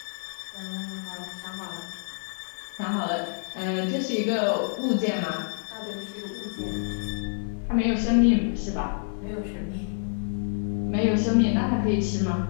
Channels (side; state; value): right; silent; 56 dB below the other